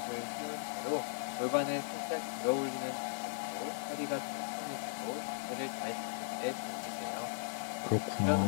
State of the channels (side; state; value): right; silent; digital silence